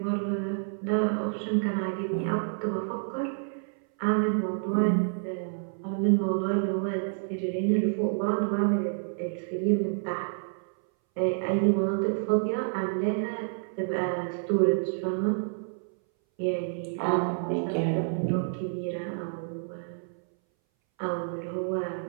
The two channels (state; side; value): silent; left; 59 dB below the other